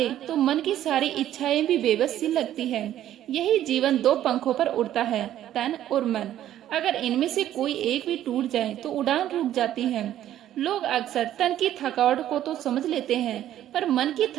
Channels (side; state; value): left; quieter; 12.1 dB